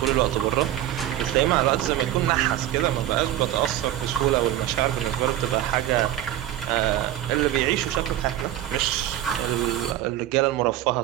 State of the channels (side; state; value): left; quieter; 13.0 dB